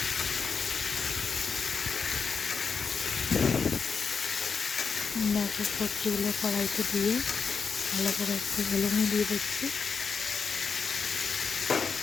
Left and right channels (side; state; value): right; quieter; 5.5 dB